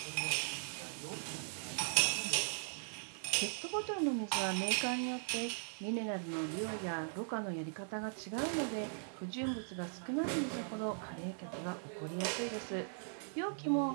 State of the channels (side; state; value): left; silent; digital silence